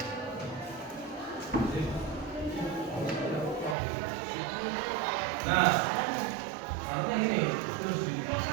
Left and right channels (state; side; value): drops out; left; at 3.8 s